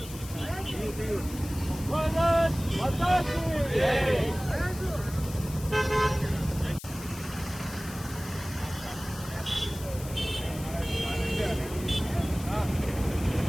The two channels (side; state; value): left; noise; hiss, 14 dB below the sound